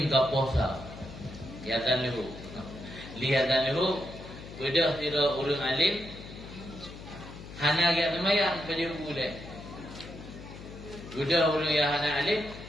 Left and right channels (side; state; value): left; noise; hum, 14 dB below the sound